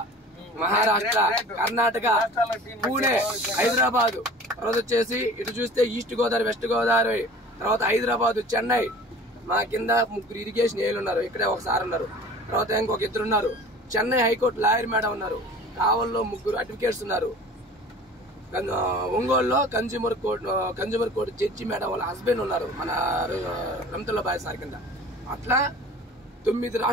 మహారాష్ట్ర, కర్ణాటక, పూణే, హైదరాబాద్, తర్వాత వచ్చేసి ఇటు చూస్తే ఈస్ట్ గోదావరి, వెస్ట్ గోదావరి, తర్వాత హైదరాబాద్, చెన్నై. మా కింద 3 ఇరిగేషన్ ఏలు ఉన్నారు. ఇక్కడే ఒకసారి ఉన్నారు. తర్వాత ఇంకొక 2 ఉన్నారు. చెన్నై హైకోర్టు లాయర్ మేడం ఉన్నారు. కావల్లో 3 అడ్వకేట్స్ ఉన్నారు. ఒంగోలులో కన్జ్యూమర్ కోర్టు జడ్జి మేడం వాళ్ళ హస్బెండ్ ఉన్నారు, మన రమతుల్లా బాయ్ సార్ కింద. అట్లా 9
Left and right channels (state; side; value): normal; both; correlation 0.43